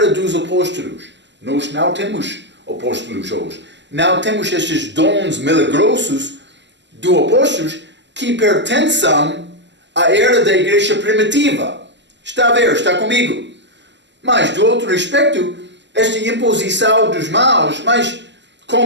dos apóstolos. Nós não temos apóstolos hoje. Não temos estes dons milagrosos dos apóstolos que pertencem à era da igreja primitiva. Está a ver? Está comigo? Mas, do outro aspecto, esta imposição dos mãos, mas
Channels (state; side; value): late; left; 0.52 ms